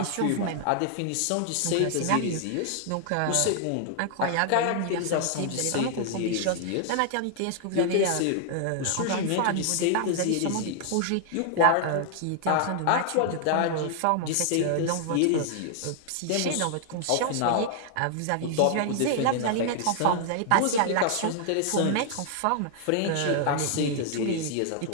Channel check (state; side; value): different; both; correlation 0.00